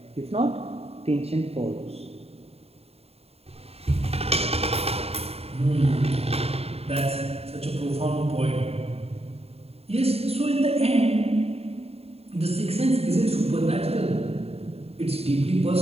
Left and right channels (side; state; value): left; late; 0.29 ms